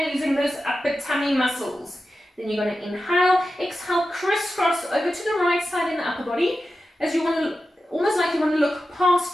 using those upper tummy muscles. Then you're going to inhale, exhale, crisscross over to the right side in the upper body as you want to, almost like you want to look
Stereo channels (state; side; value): normal; both; correlation 0.92